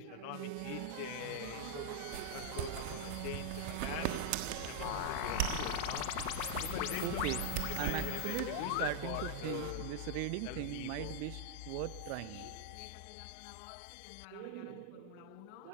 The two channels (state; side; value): different; both; correlation -0.01